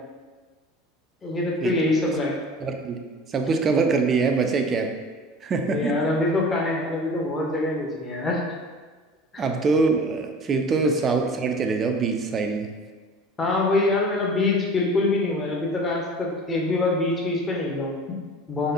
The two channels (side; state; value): both; normal; correlation 0.41